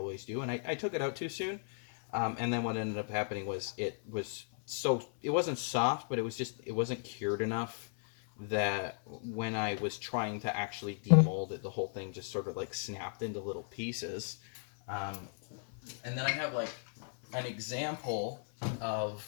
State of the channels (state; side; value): silent; right; 54 dB below the other